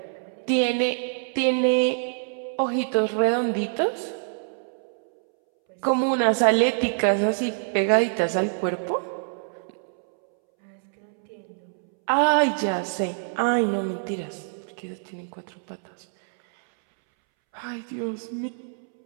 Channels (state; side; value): silent; left; 61 dB below the other